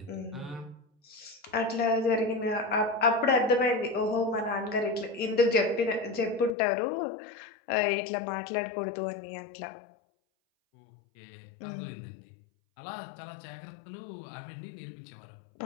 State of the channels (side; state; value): right; drops out; at 6.6 s